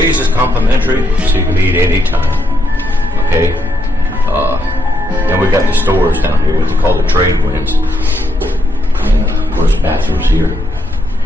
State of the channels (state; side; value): normal; both; correlation 0.78